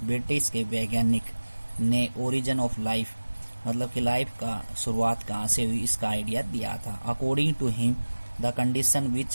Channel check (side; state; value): both; inverted; correlation -1.00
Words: ब्रिटिश के वैज्ञानिक ने ओरिजिन ऑफ लाइफ मतलब कि लाइफ का शुरुआत कहाँ से हुई इसका आइडिया दिया था। According to him the condition